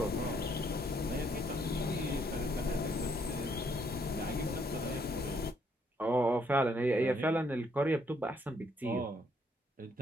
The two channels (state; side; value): normal; both; correlation 0.70